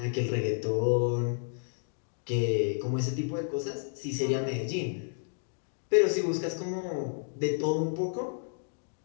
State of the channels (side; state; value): right; silent; digital silence